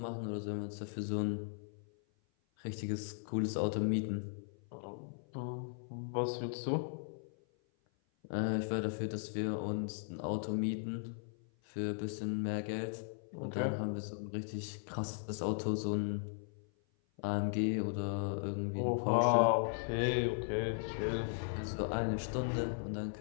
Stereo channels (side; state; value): right; silent; 53 dB below the other